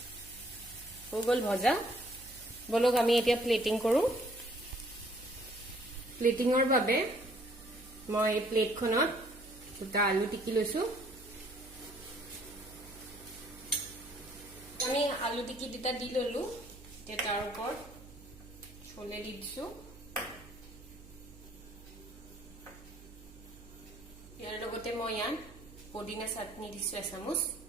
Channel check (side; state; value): right; noise; hum, 19 dB below the sound